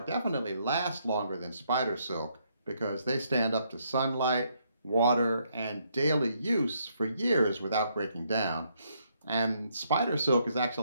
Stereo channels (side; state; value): both; inverted; correlation -0.73